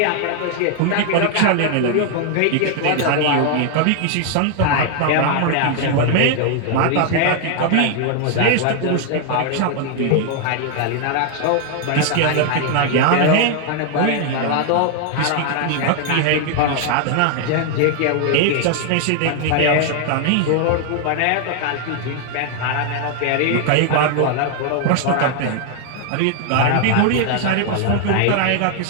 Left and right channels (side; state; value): both; different; correlation 0.00